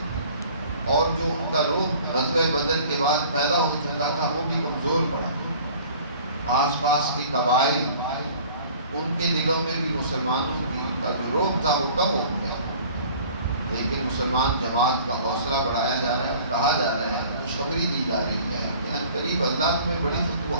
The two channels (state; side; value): inverted; both; correlation -0.49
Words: اور جو ان کا روح غزوہ بدر کے بعد پیدا ہو چکا تھا وہ بھی کمزور پڑا۔ آس پاس کے قبائل، ان کے دلوں میں بھی مسلمانوں کا جو روح تھا وہ کم ہو گیا، لیکن مسلمان جماعت کا حوصلہ بڑھایا جا رہا ہے اور کہا جا رہا ہے، خوشخبری دی جا رہی ہے کہ ان قریب اللہ تمہیں بڑی